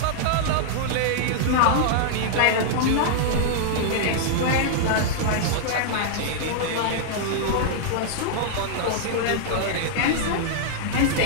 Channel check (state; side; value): different; both; correlation -0.01